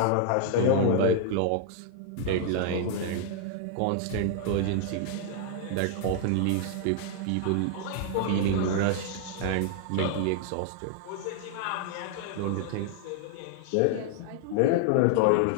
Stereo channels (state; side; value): different; both; correlation 0.00